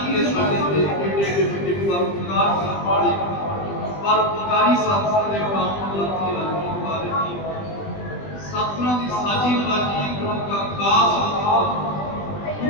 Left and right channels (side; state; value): right; late; 20 ms